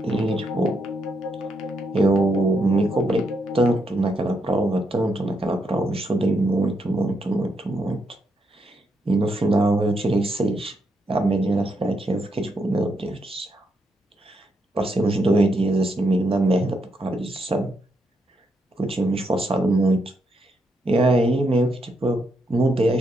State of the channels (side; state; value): both; normal; correlation 0.79